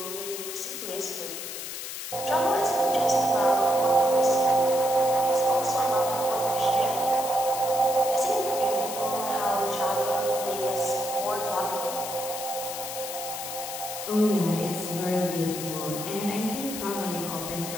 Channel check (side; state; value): left; noise; hiss, 7 dB below the sound